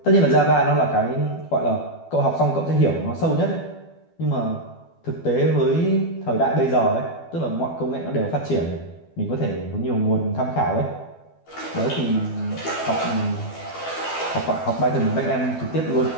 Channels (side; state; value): right; late; 12 ms